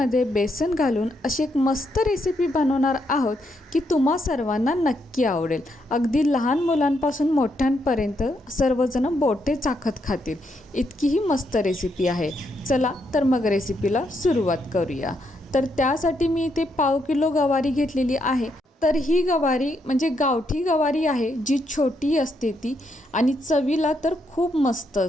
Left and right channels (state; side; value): normal; both; correlation 0.78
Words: बेसन घालून अशी एक मस्त रेसिपी बनवणार आहोत की तुम्हा सर्वांना नक्की आवडेल. अगदी लहान मुलांपासून मोठ्यांपर्यंत सर्वजण बोटे चाखत खातील इतकी ही मस्त रेसिपी आहे. चला तर मग रेसिपीला सुरुवात करूया. तर त्यासाठी मी इथे 1/2 किलो गवारी घेतलेली आहे. तर ही गवारी म्हणजे गावठी गवारी आहे, जी छोटी असते ती आणि चवीला तर खूप मस्त